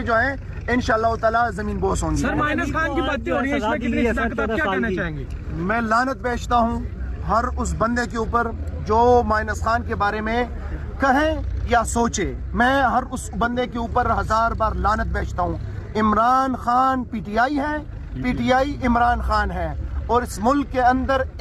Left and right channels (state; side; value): identical; both; correlation 1.00